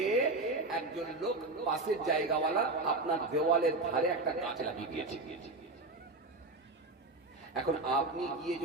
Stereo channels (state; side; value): quieter; left; 3.2 dB